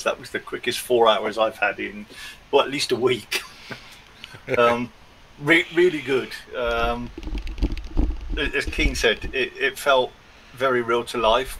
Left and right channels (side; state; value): both; identical; correlation 1.00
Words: That was the quickest 4 hours I've had in, well, at least a week. Really good. As Keen said, it felt very real to